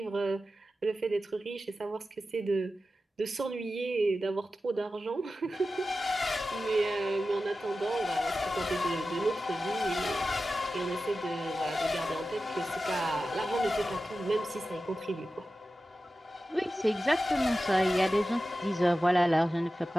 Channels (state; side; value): normal; both; correlation 0.93